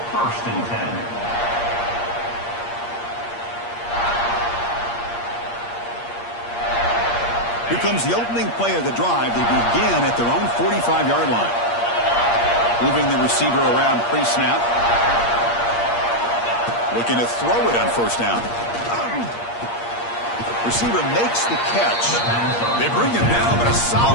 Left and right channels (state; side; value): late; right; 8.5 ms